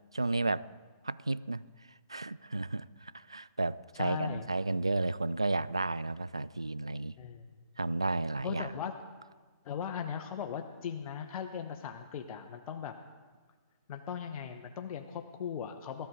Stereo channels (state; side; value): inverted; both; correlation -0.80